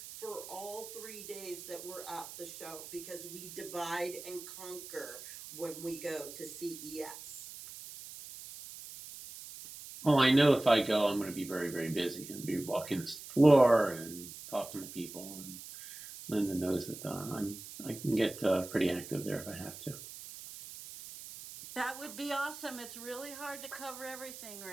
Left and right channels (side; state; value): right; noise; hiss, 13 dB below the sound